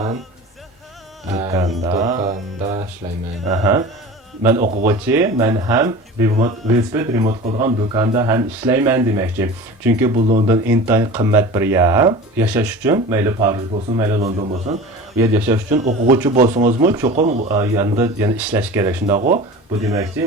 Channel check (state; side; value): normal; both; correlation 0.36